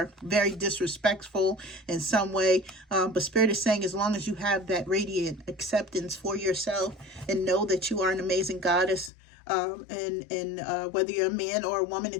very disrespectful in some way. But Spirit is saying, as long as you have that radiant acceptance for yourself and know that you are an amazing goddess, and whether you're a man or a woman,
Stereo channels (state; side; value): drops out; right; at 9.1 s